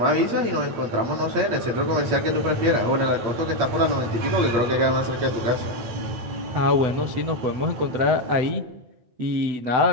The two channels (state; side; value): late; left; 8.6 ms